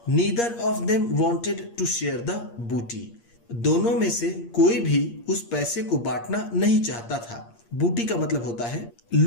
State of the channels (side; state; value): right; late; 8.6 ms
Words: Neither of them wanted to share the booty, दोनों में से कोई भी उस पैसे को बांटना नहीं चाहता था। बूटी का मतलब होता है